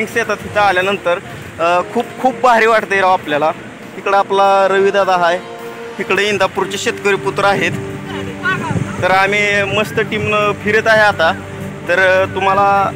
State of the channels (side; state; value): both; identical; correlation 1.00